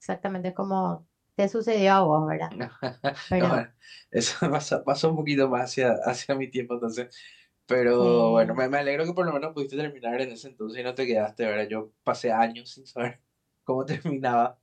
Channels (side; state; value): both; identical; correlation 1.00